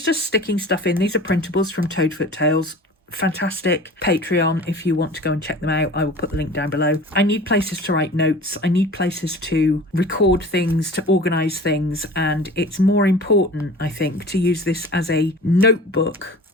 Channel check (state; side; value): normal; both; correlation 0.40